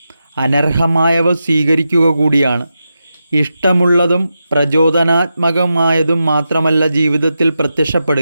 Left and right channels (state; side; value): inverted; both; correlation -0.89